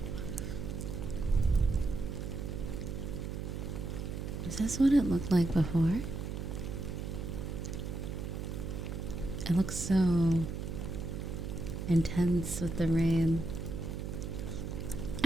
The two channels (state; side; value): noise; right; hum, 5 dB below the sound